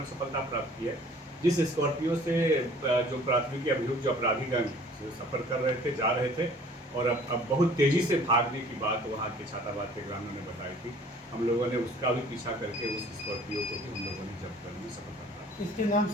सफलता प्राप्त की है, जिस स्कॉर्पियो से जो प्राथमिकी अभियुक्त जो अपराधीगण सफर कर रहे थे, जा रहे थे और अब बहुत तेज़ी से भागने की बात वहाँ के छाताबाद के ग्रामीणों ने बताई थी। हम लोगों ने उसका भी पीछा करके उस स्कॉर्पियो को भी हम लोगों ने जब्त करने में सफलता प्राप्त। इसके नाम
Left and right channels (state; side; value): normal; both; correlation 0.52